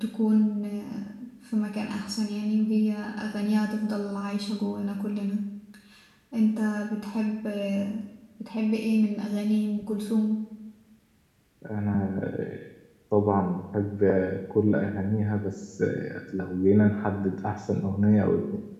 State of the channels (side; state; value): both; identical; correlation 1.00